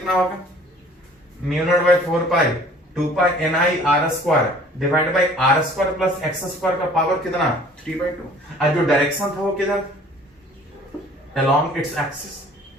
होगा, mu not by 4 pi 2 pi N I R square divide by R square plus X square का पावर कितना 3/2, और जो डायरेक्शन था वो किधर, अलोंग इट्स एक्सिस।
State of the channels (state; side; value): normal; both; correlation 0.52